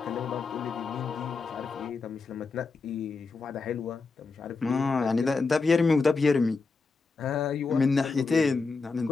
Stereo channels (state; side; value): quieter; right; 4.3 dB